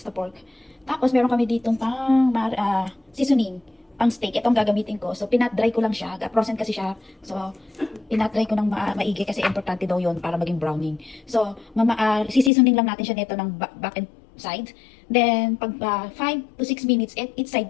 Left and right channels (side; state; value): right; drops out; at 12.5 s